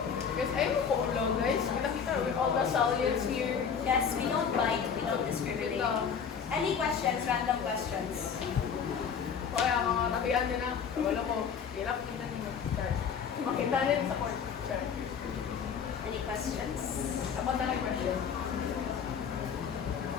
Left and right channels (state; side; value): quieter; right; 6.9 dB